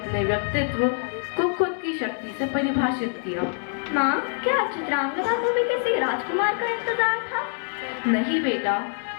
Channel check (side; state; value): right; silent; 59 dB below the other